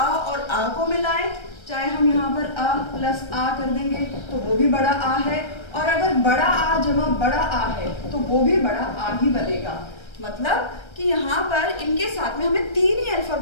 और आ को मिलाएं, चाहे हम यहाँ पर अ प्लस आ कर देंगे तो वो भी बड़ा आ है, और अगर बड़ा आ जमा बड़ा आ है तो वो भी बड़ा आ ही बनेगा। मतलब कि यहाँ पर इनके साथ में हमें 3 ही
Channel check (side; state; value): right; late; 1.3 ms